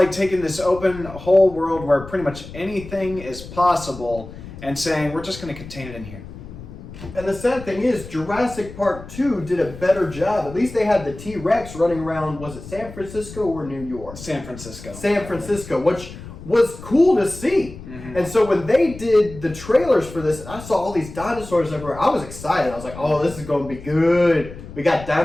taking this open whole world where pretty much anything is possible and saying we're just going to contain it in here. And the sad thing is, Jurassic Park 2 did a better job. At least they had the T-Rex running around, was it San Francisco or New York? San Francisco. San Francisco, which was cool to see. Mm-hmm. And so when they did the trailers for this, and I saw all these dinosaurs everywhere, I was excited. I was like, oh, this is going to be good. We got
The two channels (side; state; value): left; noise; rumble, 14 dB below the sound